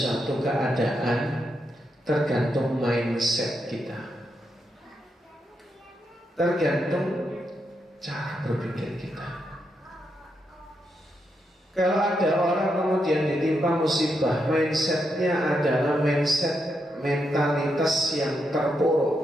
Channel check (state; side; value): normal; both; correlation 0.82